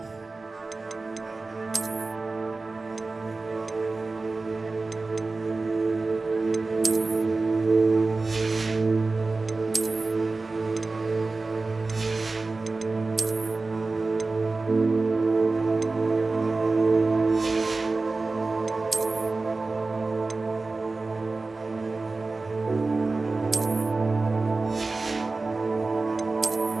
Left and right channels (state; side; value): quieter; left; 3.6 dB